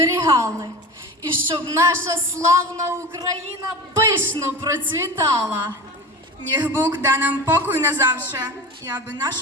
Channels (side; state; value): both; normal; correlation 0.31